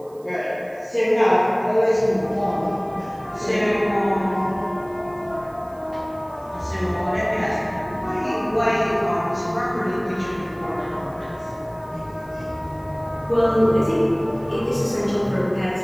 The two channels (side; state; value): right; noise; hiss, 30 dB below the sound